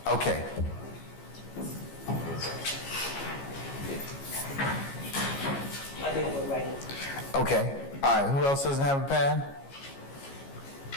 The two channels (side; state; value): right; late; 15 ms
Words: Okay. I think we're right. Okay. All right. Who else doesn't have a pad?